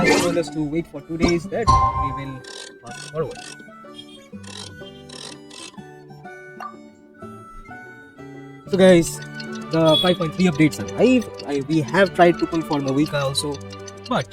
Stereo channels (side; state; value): both; identical; correlation 1.00